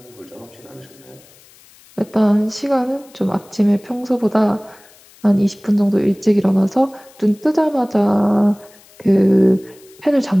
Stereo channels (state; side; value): noise; left; hiss, 27 dB below the sound